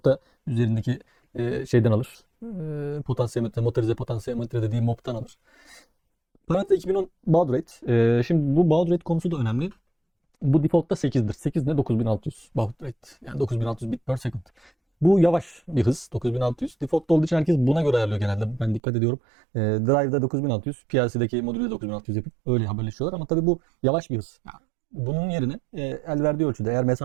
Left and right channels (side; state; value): left; drops out; at 18.8 s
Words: üzerindeki şeyden alır. Potansiyometre, motorize potansiyometre dediği MOP'tan alır. Parametre 2010 baud rate. Şimdi bu baud rate konusu da önemli. Bu default'ta 8'dir. 8 ne? 9600 baud rate. Yani 9600 bit per second. Bu yavaş bir hız. 9600. Default olduğu için herkes buna göre ayarlıyor genelde. Ben dikkat ediyorum. Drive'da 9600, PLC'deki modülde 9600 yapıp öyle haberleşiyorlar. Ama tabii bu yavaş bir hız. Yani bunun yerine el verdiği ölçüde, eğer